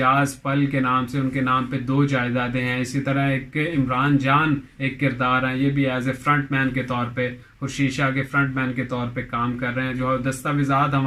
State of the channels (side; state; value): both; identical; correlation 1.00